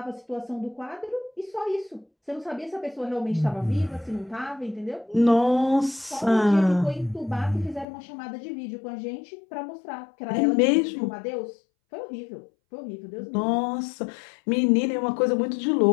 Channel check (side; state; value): right; drops out; at 7.9 s